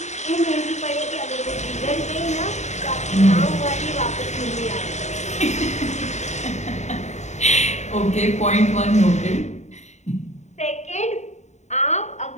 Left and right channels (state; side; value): late; right; 0.33 ms